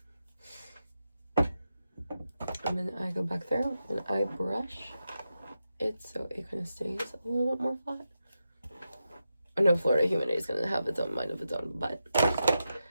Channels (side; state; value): both; inverted; correlation -0.88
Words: And then I go back there and I brush it so it kind of stays a little bit more flat. I know Florida Humidity is going to have its own mind of its own, but